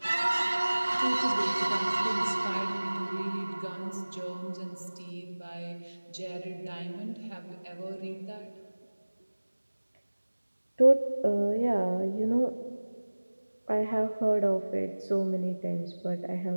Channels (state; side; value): inverted; both; correlation -1.00